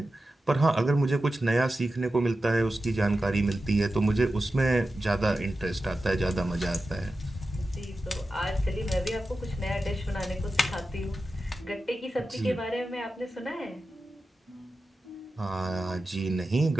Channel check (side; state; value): both; normal; correlation 0.93